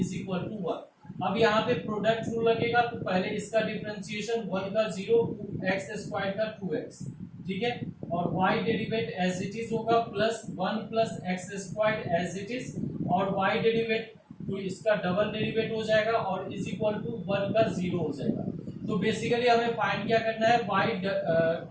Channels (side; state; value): both; identical; correlation 1.00